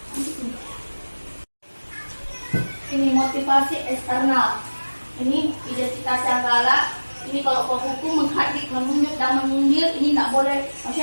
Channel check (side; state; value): both; inverted; correlation -1.00